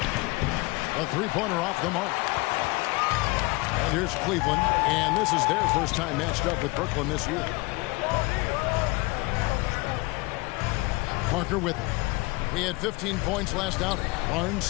A three-pointer off the mark. And here's Cleveland. And this is their first time matched up with Brooklyn this year. Parker with him. He had 15 points last outing. Barnes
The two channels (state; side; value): quieter; right; 24.1 dB